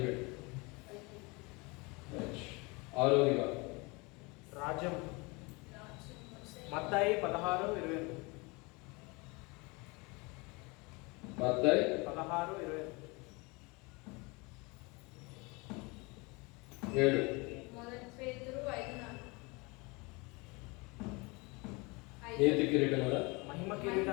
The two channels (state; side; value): quieter; right; 27.1 dB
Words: 6వదిగా రాజ్యం. మత్తయి 16:22. మత్తయి 16:22. 7. నీతి కిరీటం కదా. మహిమ